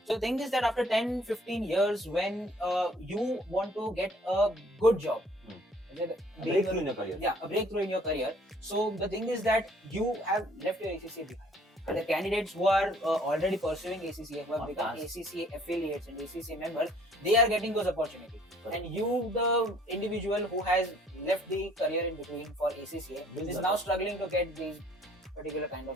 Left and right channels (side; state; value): both; normal; correlation 0.58